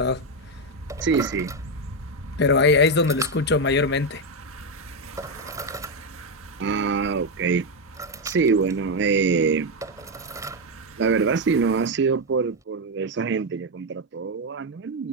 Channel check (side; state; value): both; normal; correlation 0.06